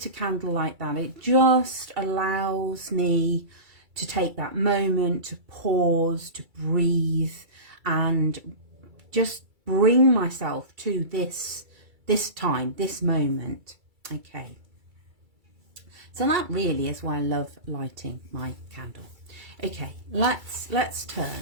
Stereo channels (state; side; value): late; left; 2.3 ms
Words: a candle like that, it just allows me to take that moment to pause, to breathe, and just bring myself to this time, this moment. Okay. So that really is why I love lighting my candle. Okay, let's